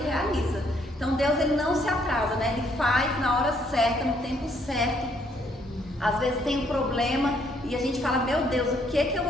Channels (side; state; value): both; normal; correlation 0.69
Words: realiza. Então, Deus, Ele não se atrasa, né? Ele faz na hora certa, no tempo certo. Às vezes tem um problema e a gente fala, meu Deus, o que eu